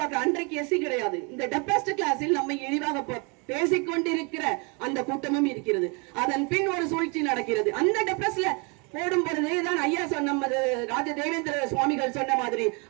அன்றைக்கு எஸ்சி கிடையாது. இந்த டெப்ரஸ்ட் கிளாஸில் நம்ம இழிவாக பேசிக்கொண்டிருக்கிற அந்த கூட்டமும் இருக்கிறது. அதன் பின் ஒரு சூழ்ச்சி நடக்கிறது. அந்த டெப்ரஸ்ட்ல போடும் பொழுதுதான் ஐயா நமது ராஜ தேவேந்திர சுவாமிகள் சொன்ன மாதிரி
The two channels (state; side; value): quieter; left; 32.0 dB